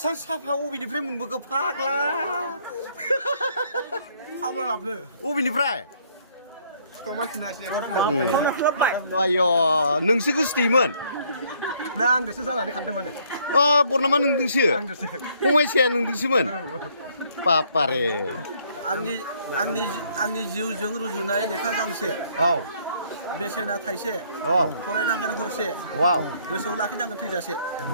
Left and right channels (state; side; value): inverted; both; correlation -0.65